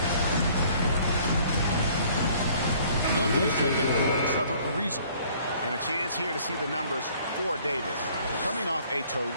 And a chance here to see the numbers for Davis. Coming off a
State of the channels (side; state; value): both; inverted; correlation -0.57